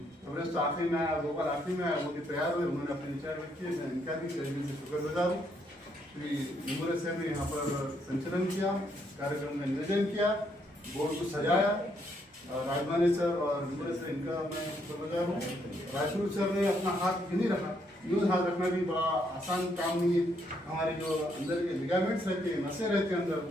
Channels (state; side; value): normal; both; correlation 0.73